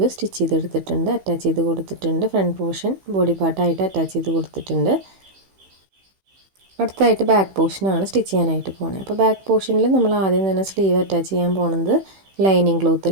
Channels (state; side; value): late; left; 16 ms